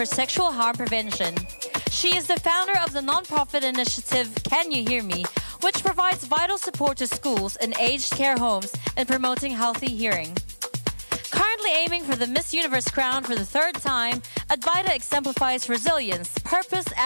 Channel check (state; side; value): inverted; both; correlation -1.00